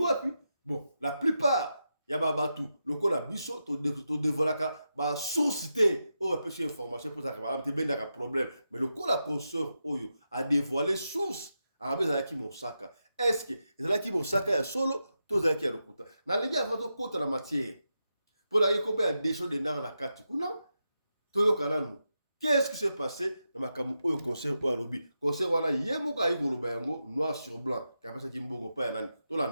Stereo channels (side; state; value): both; inverted; correlation -0.88